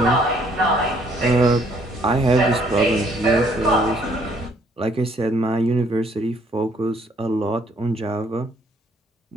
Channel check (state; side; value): normal; both; correlation 0.64